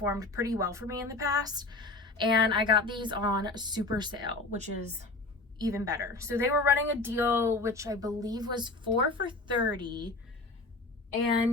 pretty well for me in the past. And I got these on super sale, which is even better. So they were running a deal, which I believe was 4 for $30.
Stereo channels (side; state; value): right; quieter; 3.3 dB